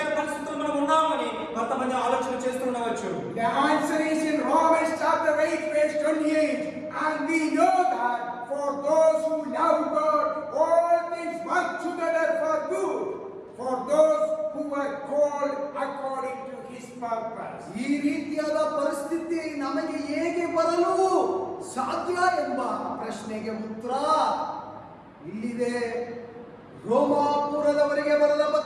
పరిస్థితుల్లో మనం ఉన్నామని కొంతమంది ఆలోచన చేస్తుండవచ్చు. The answer is in Romans chapter 8 verse 28, and we know that for those who love God all things work together for good, for those who are called according to his purpose. ಈ ರೀತಿಯಾದ ಪರಿಸ್ಥಿತಿ ನಮಗೆ ಹೇಗೆ ಬರಲು ಸಾಧ್ಯ ಎಂಬ ಪ್ರಶ್ನೆಗೆ ಉತ್ತರ ಇಲ್ಲಿದೆ. ರೋಮಾಪುರದವರಿಗೆ ಬರೆದ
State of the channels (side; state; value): both; identical; correlation 1.00